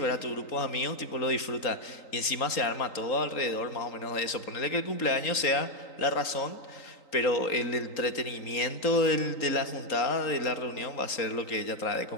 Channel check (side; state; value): right; late; 3.8 ms